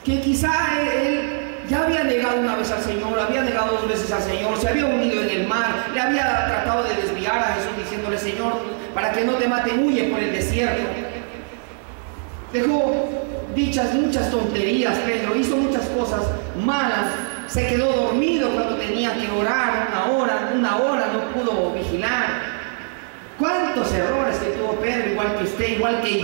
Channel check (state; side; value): silent; left; 56 dB below the other